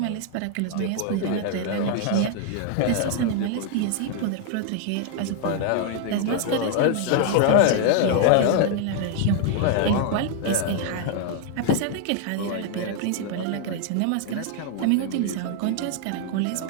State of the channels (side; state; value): both; different; correlation 0.00